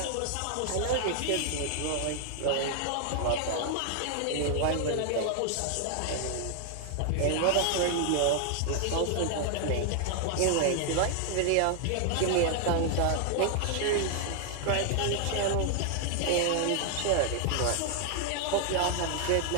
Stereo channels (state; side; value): different; both; correlation 0.00